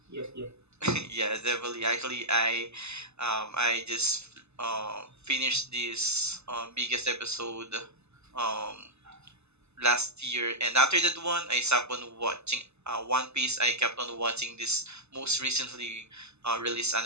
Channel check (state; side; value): late; left; 0.80 ms